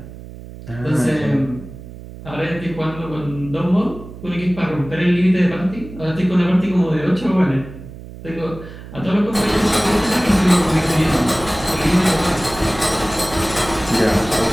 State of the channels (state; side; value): noise; right; hum, 15 dB below the sound